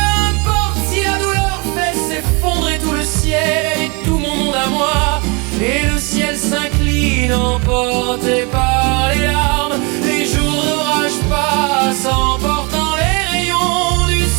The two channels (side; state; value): left; quieter; 30.2 dB